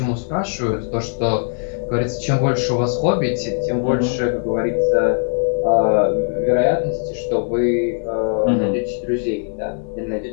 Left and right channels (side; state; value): right; silent; 66 dB below the other